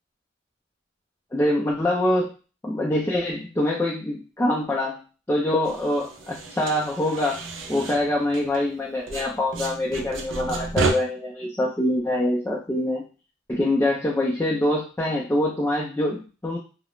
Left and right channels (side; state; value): both; normal; correlation 0.70